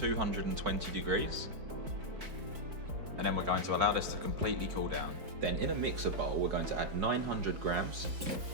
degrees. And then we're going to allow this to completely cool down. Then in a mixer bowl, we're going to add 900 grams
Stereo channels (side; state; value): left; late; 4.5 ms